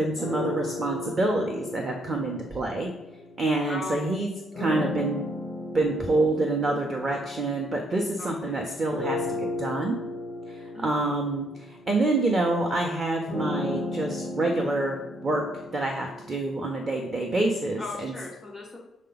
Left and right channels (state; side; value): normal; both; correlation 0.71